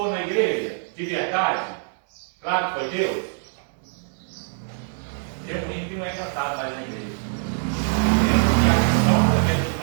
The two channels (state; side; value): silent; left; 63 dB below the other